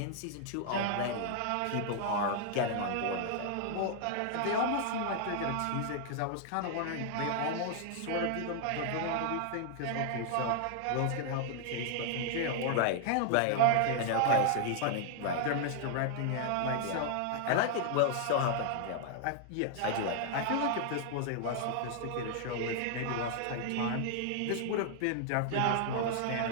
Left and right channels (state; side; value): different; both; correlation 0.00